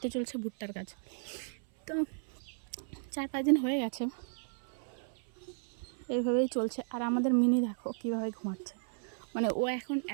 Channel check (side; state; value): left; silent; 55 dB below the other